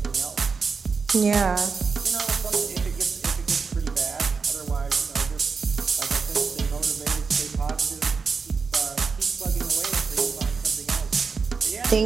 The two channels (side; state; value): left; quieter; 5.1 dB